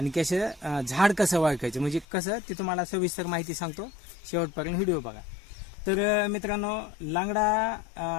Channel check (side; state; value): right; drops out; at 2.1 s